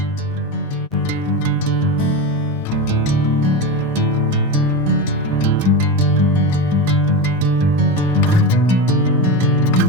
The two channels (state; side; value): normal; both; correlation 0.20